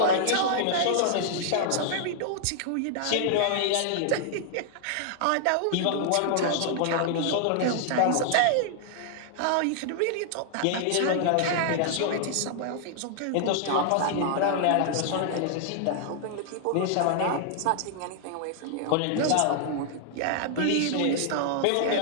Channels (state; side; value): different; both; correlation -0.01